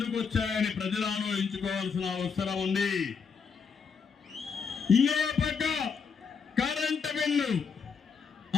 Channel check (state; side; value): quieter; right; 5.9 dB